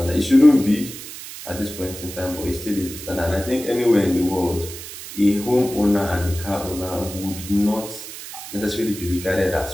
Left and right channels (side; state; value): right; noise; hiss, 12 dB below the sound